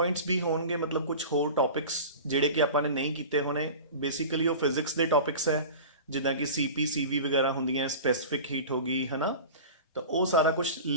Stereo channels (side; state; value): both; inverted; correlation -0.34